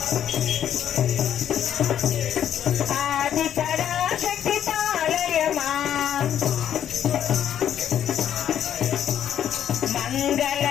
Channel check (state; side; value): quieter; right; 10.0 dB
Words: ఆది పరాశక్తి పాలయమా మంగళ